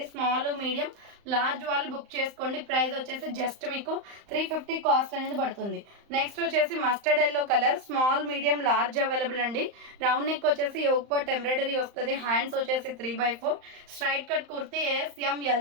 స్మాల్ మీడియం లార్జ్ వాళ్ళు బుక్ చేసుకోండి, ప్రైస్ వచ్చేసి జస్ట్ మీకు 350 కాస్ట్ అనేది పడుతుంది. నెక్స్ట్ వచ్చేసి mustard yellow colour, small medium large available అండి, రౌండ్ నెక్ వచ్చేసి యోగ్ పార్ట్ ఎంబ్రాయిడరీ వస్తుంది, హ్యాండ్స్ వచ్చేసి 3/4 straight cut kurti,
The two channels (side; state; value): left; late; 35 ms